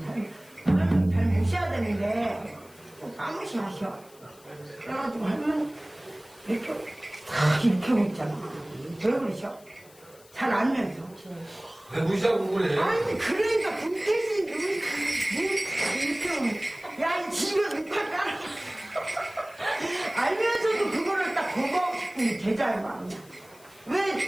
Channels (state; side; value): noise; left; hiss, 25 dB below the sound